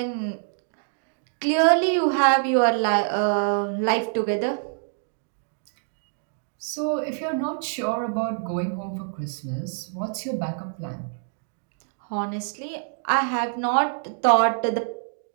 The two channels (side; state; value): left; silent; digital silence